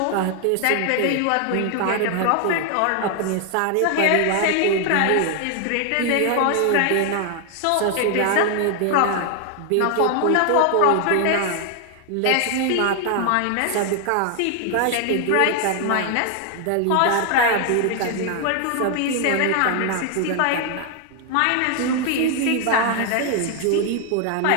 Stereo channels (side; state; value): both; different; correlation 0.00